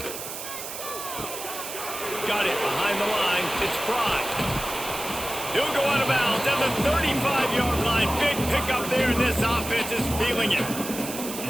Got it behind the line. It's Pride. He'll go out of bounds at the 35-yard line. Big pickup there, and this offense is feeling it.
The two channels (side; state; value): right; noise; hiss, 8 dB below the sound